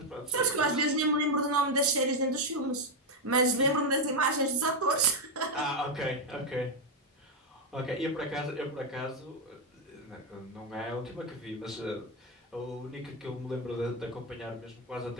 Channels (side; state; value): both; normal; correlation 0.05